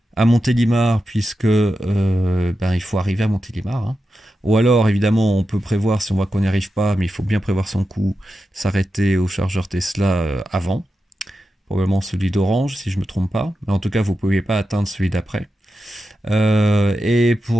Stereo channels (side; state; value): both; normal; correlation 0.90